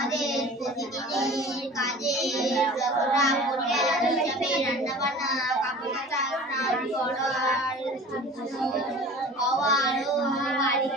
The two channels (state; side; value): normal; both; correlation 0.41